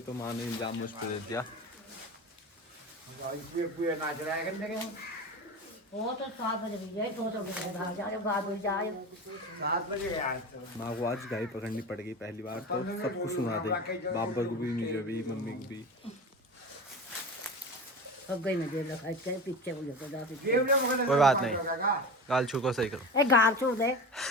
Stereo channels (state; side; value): normal; both; correlation 0.29